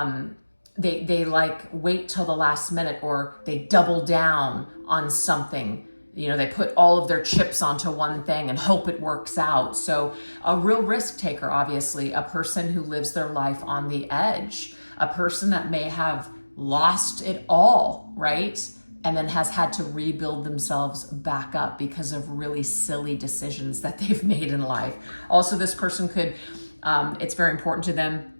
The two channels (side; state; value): both; inverted; correlation -1.00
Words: they like wait till the last minute, or they double down on something. You know, they put all of their chips onto one thing and hope it works out. So a real risk taker, obviously, a person who lives their life on the edge, a person that may have lost it all, right? And then has had to rebuild themselves back up because of really silly decisions that they've made in life. Also, this person could, it's very important to them